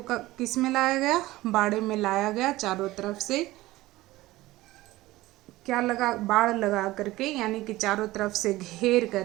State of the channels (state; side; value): quieter; left; 17.9 dB